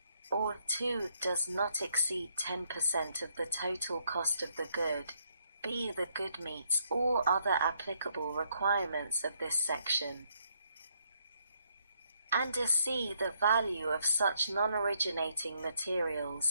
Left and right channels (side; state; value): both; inverted; correlation -0.73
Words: or 2. Does not exceed 10% of the total cost of the good. B. The good meets all other applicable requirements of this section. And C. The value of such non-originating